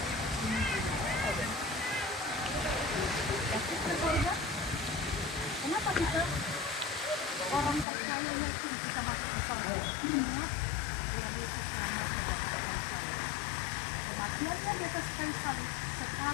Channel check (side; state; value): right; drops out; at 7.9 s